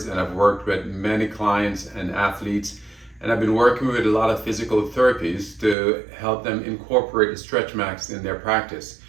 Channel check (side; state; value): left; drops out; at 5.8 s